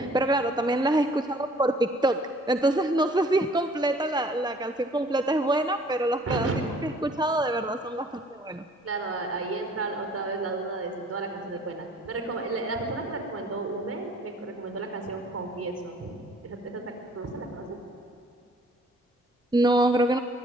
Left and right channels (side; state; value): both; normal; correlation 0.56